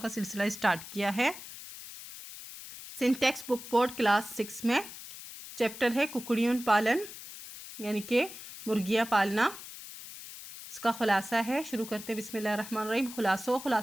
सिलसिला स्टार्ट किया है। सिंटेक्स बुक बोर्ड क्लास 6 में चैप्टर है कुकड़ियों पालन, यानी कि मुर्गियाँ पालना। इसका खुलासा है। शुरू करते बिस्मिल्लाहिर्रहमानिर्रहीम। खुलासों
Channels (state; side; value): noise; left; hiss, 13 dB below the sound